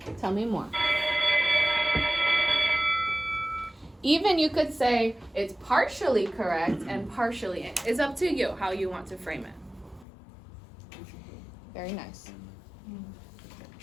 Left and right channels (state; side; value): drops out; right; at 10.1 s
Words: tell me more. Even you could say it's partially correct and partially. It's up to you how you want to frame it. Very nice.